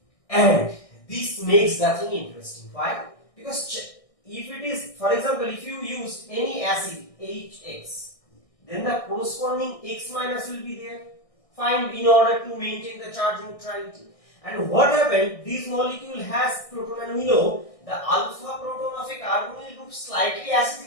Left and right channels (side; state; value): right; late; 1.6 ms